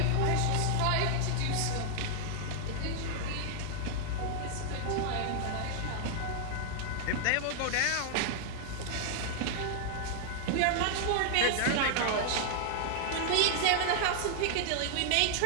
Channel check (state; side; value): different; both; correlation -0.01